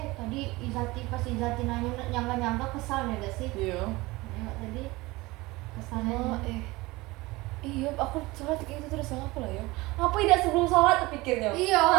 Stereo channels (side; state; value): left; quieter; 21.3 dB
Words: Tadi pas Izati nanya nyangka-nyangka kesal ya gak sih? Iya. Nengok tadi kesalnya. Oh, iya, aku sholat kayak gitu terus apa lah ya? Apa tidak sebelum sholat terpikirnya? Iya.